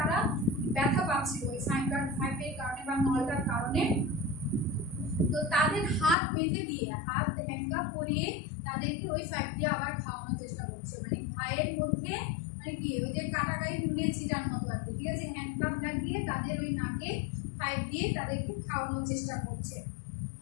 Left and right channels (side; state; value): right; drops out; at 6.2 s